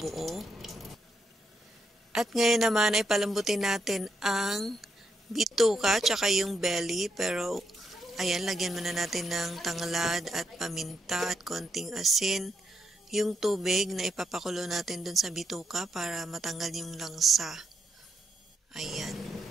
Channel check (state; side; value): normal; both; correlation 0.80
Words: At ngayon naman ay palambutin natin ang bituka tsaka yung belly, pero ayan, lagyan muna natin ng tanglad at paminta at konting asin, yung tubig na ipapakulo natin dun sa bituka para matanggal yung langsa. Ayan,